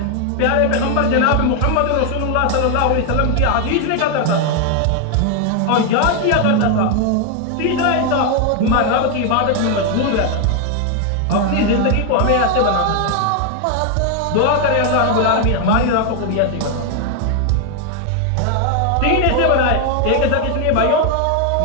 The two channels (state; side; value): different; both; correlation 0.01